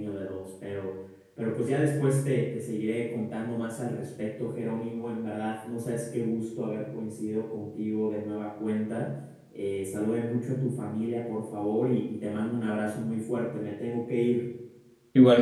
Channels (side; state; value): both; identical; correlation 1.00